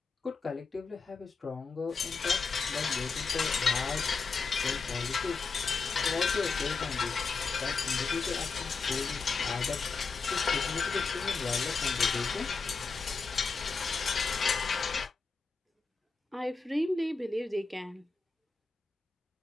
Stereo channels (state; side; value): quieter; right; 4.6 dB